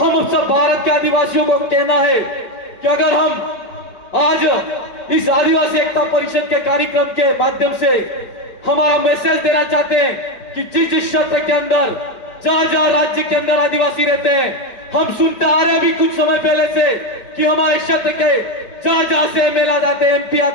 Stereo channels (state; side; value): late; right; 4.5 ms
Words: सब भारत के आदिवासियों को कहना है कि अगर हम आज इस आदिवासी एकता परिषद के कार्यक्रम के माध्यम से हमारा मैसेज देना चाहते हैं कि जिस क्षेत्र के अंदर, जहां राज्य के अंदर आदिवासी रहते हैं, हम सुनते आ रहे हैं अभी कुछ समय पहले से कि हमारे क्षेत्र के जहां से एमएलए जाते हैं, एमपी